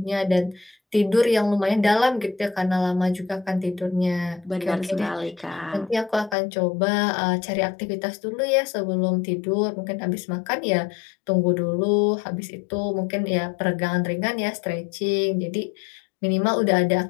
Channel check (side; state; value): right; drops out; at 6.4 s